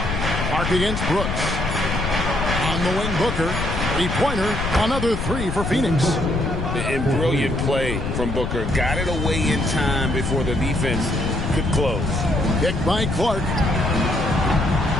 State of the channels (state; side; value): noise; left; rumble, 4 dB below the sound